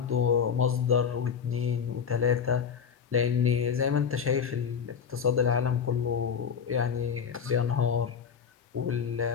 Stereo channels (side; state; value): right; quieter; 6.9 dB